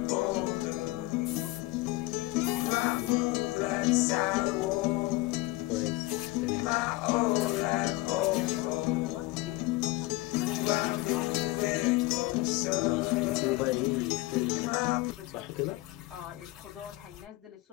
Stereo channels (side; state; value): right; quieter; 20.1 dB